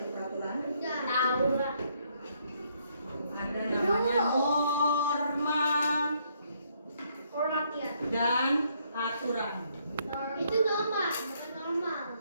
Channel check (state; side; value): inverted; both; correlation -0.71